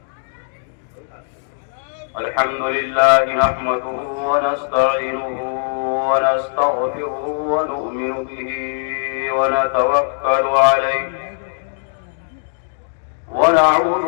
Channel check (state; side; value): silent; right; digital silence